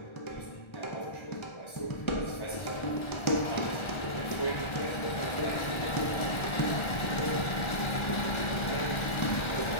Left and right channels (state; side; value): late; right; 1.3 ms